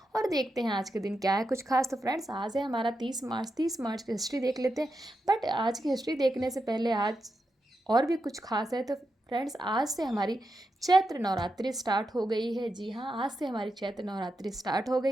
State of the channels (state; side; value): normal; both; correlation 0.87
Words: और देखते हैं आज के दिन क्या है कुछ खास। तो फ्रेंड्स, आज है हमारा 30 मार्च की हिस्ट्री देख लेते हैं। बट आज की हिस्ट्री देखने से पहले आज और भी कुछ खास है। तो फ्रेंड्स, आज से हमारी चैत्र नवरात्रि स्टार्ट हो गई है। जी हाँ, आज से हमारी चैत्र नवरात्रि स्टार्ट हो